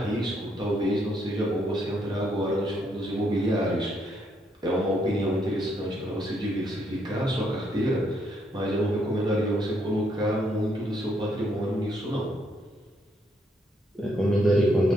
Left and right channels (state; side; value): normal; both; correlation 0.73